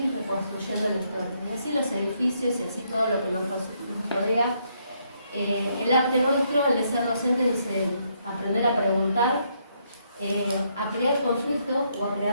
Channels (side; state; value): both; inverted; correlation -0.74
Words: reconstruyendo la historia. Y así los edificios y así todo lo que nos rodea. El arte nuestro, el de ser docente, dice aprender a preguntar, a crear conflicto o a